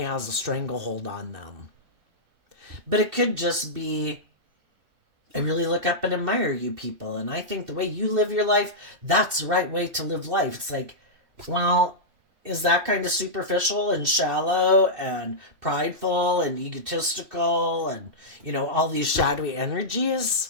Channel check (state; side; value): late; left; 2.7 ms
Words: has a stranglehold on them. But it could just be I really look up and admire you people. And I think the way you live your life, that's the right way to live life. It's like, well, is that kind of superficial and shallow and prideful and egotistical and, all these shadowy energies?